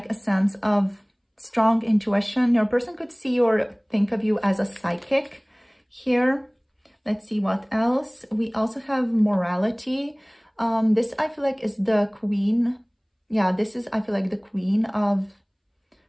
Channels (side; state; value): both; identical; correlation 1.00